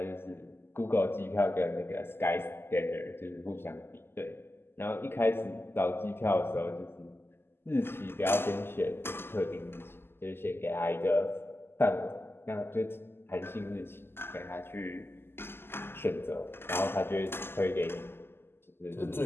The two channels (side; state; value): right; late; 0.11 ms